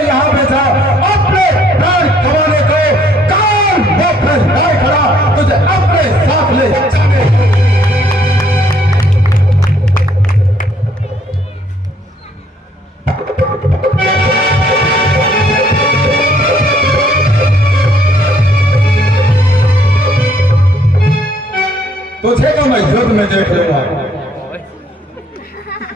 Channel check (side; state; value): both; normal; correlation 0.65